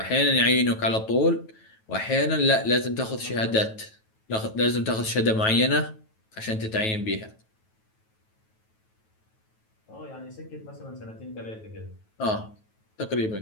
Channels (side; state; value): right; late; 9.2 ms